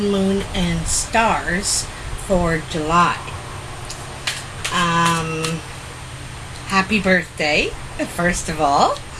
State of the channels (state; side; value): identical; both; correlation 1.00